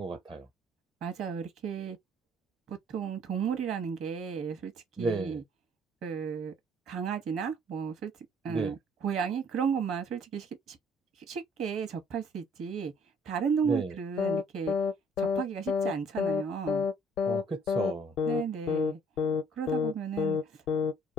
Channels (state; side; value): normal; both; correlation 0.59